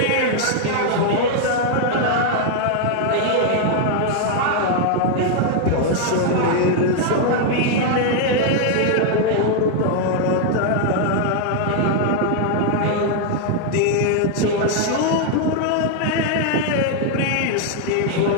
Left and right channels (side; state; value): both; different; correlation 0.00